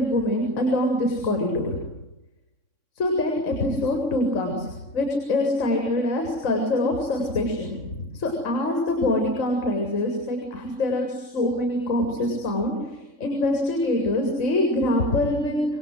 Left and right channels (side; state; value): right; late; 3.6 ms